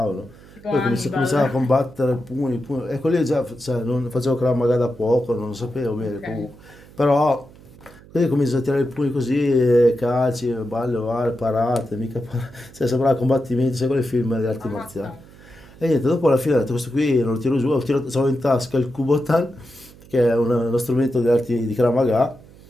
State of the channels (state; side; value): noise; right; hum, 22 dB below the sound